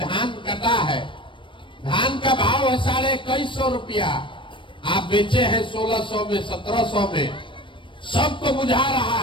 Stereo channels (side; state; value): right; late; 0.24 ms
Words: कटा है, धान का भाव है 2150 रुपया, आप बेचे हैं 1600 में, 1700 में। सबको बुझा